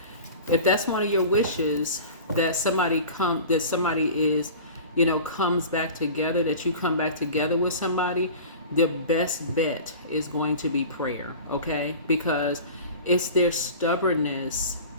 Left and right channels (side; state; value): both; inverted; correlation -0.38